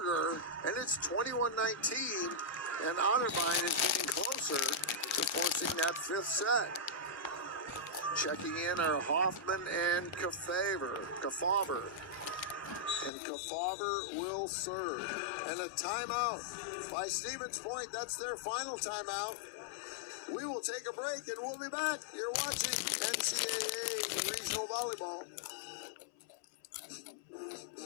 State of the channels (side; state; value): right; drops out; at 13.1 s